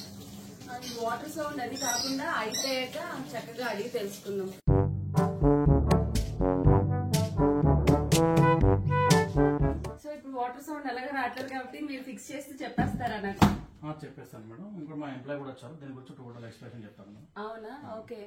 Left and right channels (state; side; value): identical; both; correlation 1.00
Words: వాటర్ సౌండ్ అది కాకుండా అయిపోయాక చక్కగా అడిగి తెలుసుకుందాం. సో ఇప్పుడు వాటర్ సౌండ్ అలాగే రావట్లేదు కాబట్టి మీరు ఫిక్స్ చేస్తే చెప్పేస్తారా నాకు? చెప్పేస్తాను మేడం. ఇంకా మా ఎంప్లాయ్ కూడా వచ్చారు, దీని గురించి టోటల్ ఎక్స్ప్లెనేషన్ చెప్తాను మేడం. అవునా? ఓకే.